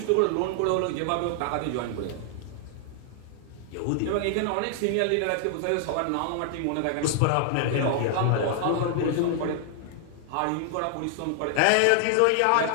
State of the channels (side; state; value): both; different; correlation 0.00